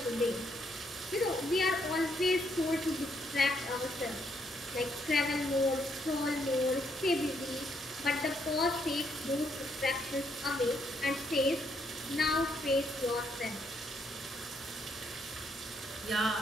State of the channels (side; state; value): both; normal; correlation 0.74